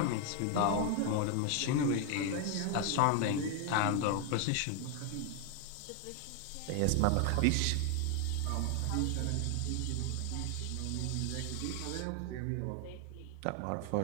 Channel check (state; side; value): different; both; correlation 0.01